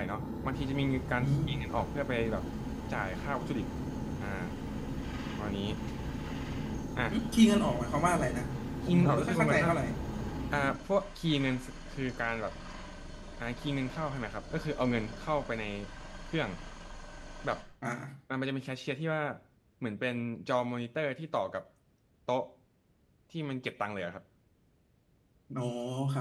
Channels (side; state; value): both; identical; correlation 1.00